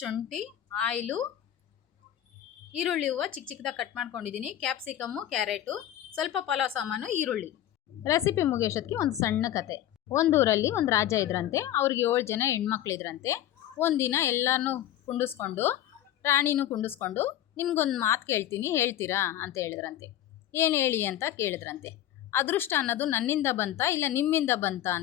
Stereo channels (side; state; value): right; quieter; 12.3 dB